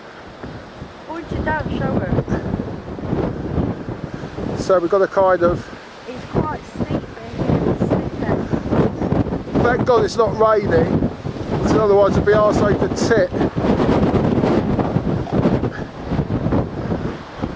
Point it down, show her. So we've got to kind of... It's quite steep here. Thank God it's not raining, because otherwise it'd be arsehole to tit.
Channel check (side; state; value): both; identical; correlation 1.00